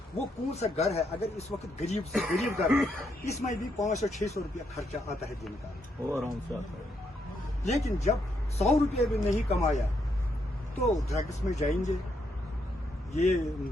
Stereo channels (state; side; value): normal; both; correlation 0.77